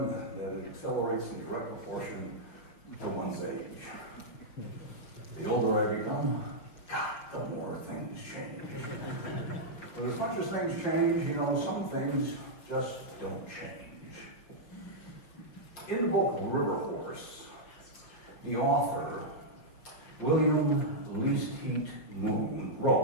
that it accelerates in direct proportion to one's age. The older I become, God, the more things change. But as much as things change, you know, some things just don't change. In the book River Horse, the author, William Least Heat Moon,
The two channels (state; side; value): late; right; 5.8 ms